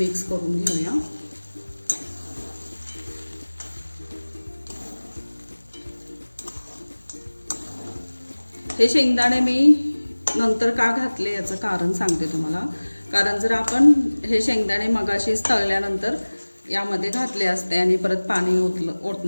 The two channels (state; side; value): inverted; both; correlation -1.00